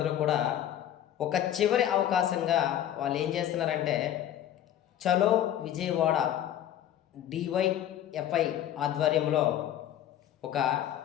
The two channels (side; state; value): right; quieter; 11.2 dB